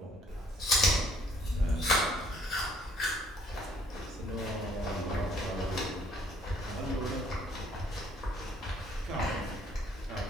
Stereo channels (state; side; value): normal; both; correlation 0.61